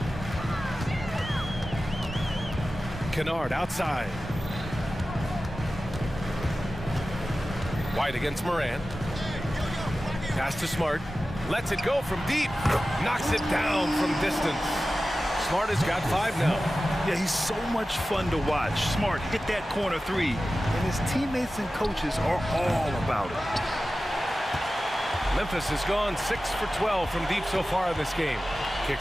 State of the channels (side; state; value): both; normal; correlation 0.95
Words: Kennard outside. White against Morant. Pass to Smart. Lets it go from deep. Knocks it down from distance. Smart has got 5 now. Yeah, he's so much fun to watch. Smart hit that corner 3, and his teammates and coaches are all about it. Memphis has gone 6 for 12 from deep so far in this game.